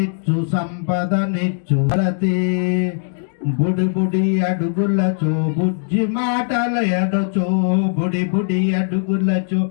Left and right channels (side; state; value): right; silent; 65 dB below the other